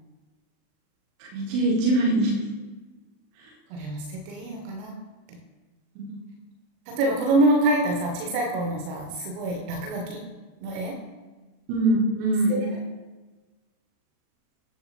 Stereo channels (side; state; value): left; late; 40 ms